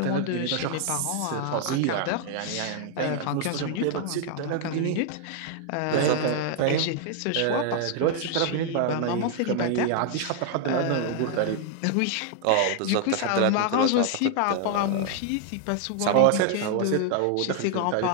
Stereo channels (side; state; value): both; different; correlation 0.00